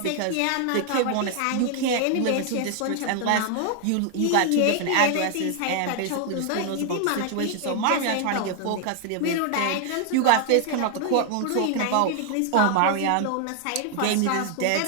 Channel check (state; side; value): different; both; correlation 0.00